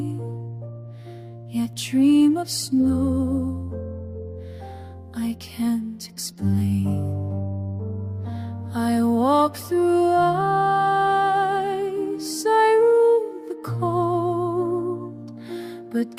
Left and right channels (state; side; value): identical; both; correlation 1.00